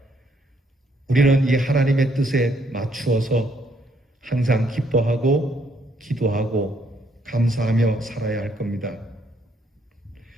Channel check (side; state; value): both; normal; correlation 0.71